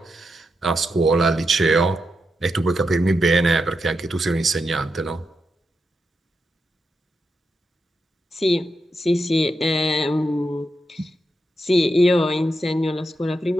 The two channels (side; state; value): both; normal; correlation 0.85